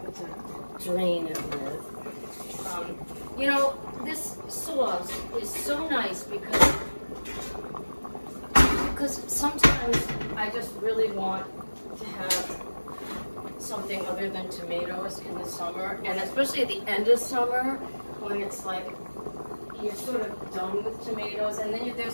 to drain it with. You know, this sauce is so nice because sometimes I just really want to have something other than tomatoes in the summer, and especially at the end of summer when it's like you're sort of done with tomatoes, and then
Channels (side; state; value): both; inverted; correlation -1.00